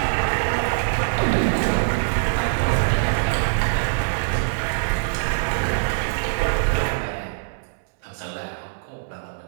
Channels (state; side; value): silent; left; digital silence